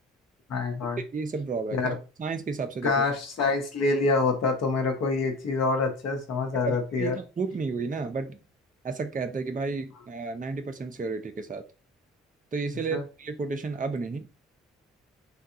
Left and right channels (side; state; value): both; normal; correlation 0.35